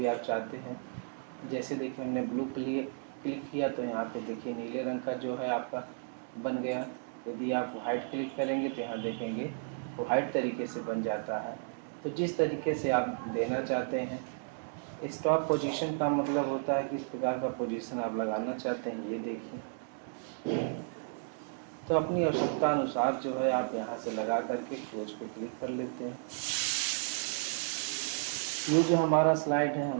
आप चाहते हैं। जैसे देखिए हमने ब्लू क्लिक किया तो यहाँ पे देखिए नीले रंग का जो है आपका बन गया। यदि आप वाइट क्लिक करेंगे तो यहाँ देखेंगे वो वाइट तरीके से बन जाता है। तो जिस तरीके से आप देना चाहते हैं। स्टॉप पोजीशन का मतलब होता है किस प्रकार का पोजीशन आप लगाना चाहते हैं, ये देखिए। तो अपनी आवश्यकता अनुसार जो है आप यहाँ से लगा करके क्लोज पे क्लिक कर लेते हैं। ये जो हमारा स्लाइड है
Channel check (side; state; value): left; silent; digital silence